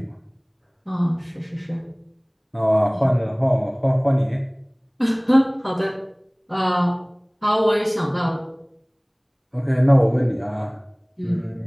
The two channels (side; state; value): both; identical; correlation 1.00